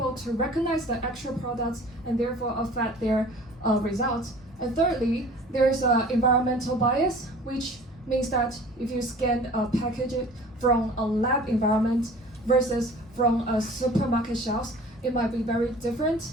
to recognize the actual products and therefore affect their results. And thirdly, there's an environmental bias, which means that if you scan a package from a lab environment versus from a supermarket shelves, it might be very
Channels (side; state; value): both; normal; correlation 0.46